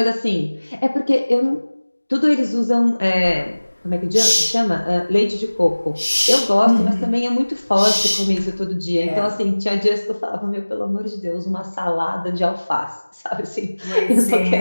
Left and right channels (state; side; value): inverted; both; correlation -1.00